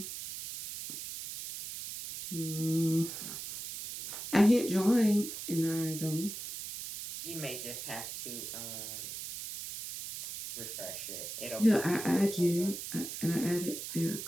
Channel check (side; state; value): right; noise; hiss, 8 dB below the sound